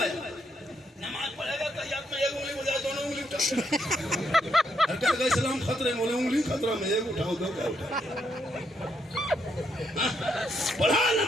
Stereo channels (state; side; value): normal; both; correlation 0.77